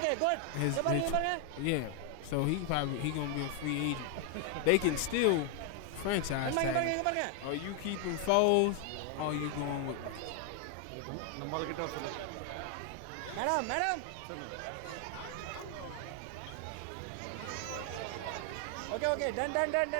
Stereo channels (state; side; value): different; both; correlation 0.00